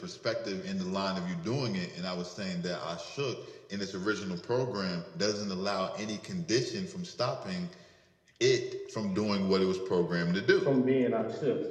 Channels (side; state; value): both; identical; correlation 1.00